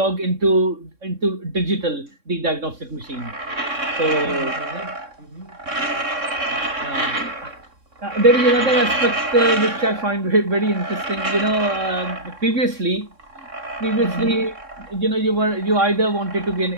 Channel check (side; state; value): left; late; 3.6 ms